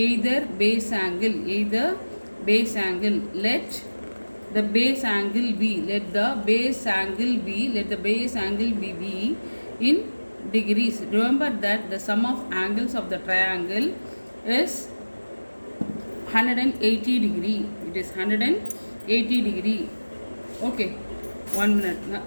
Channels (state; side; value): inverted; both; correlation -1.00